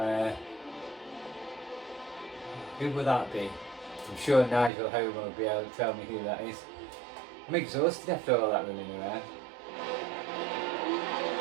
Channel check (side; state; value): left; drops out; at 4.7 s